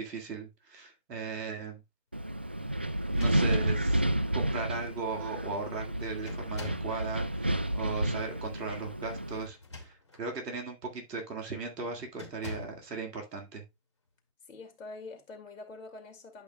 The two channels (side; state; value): both; inverted; correlation -0.69